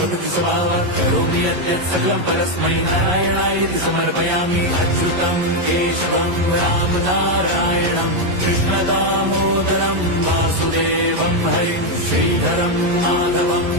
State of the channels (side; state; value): left; late; 11 ms